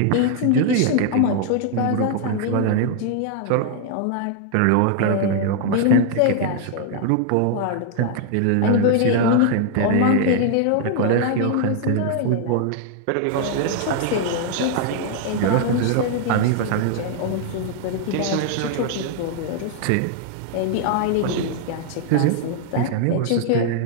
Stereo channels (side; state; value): both; different; correlation 0.00